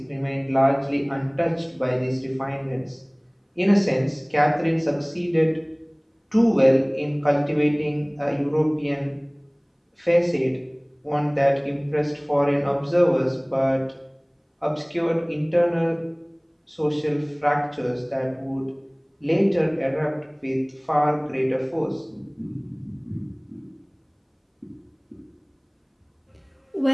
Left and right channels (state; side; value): identical; both; correlation 1.00